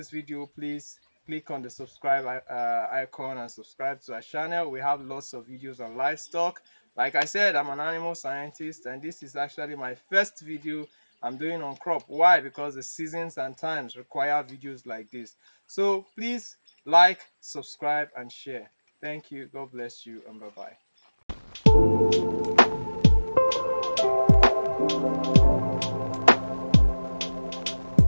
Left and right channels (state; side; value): inverted; both; correlation -1.00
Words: video, please click on the subscribe icon and subscribe to our channel. We have lots of videos on livestock. Like I said, I'm an animal scientist, and this is actually my first video I'm doing on crop. Why? Because the seasons and times require videos like this. So please like, subscribe, and share. Thank you. God bless you, and bye-bye.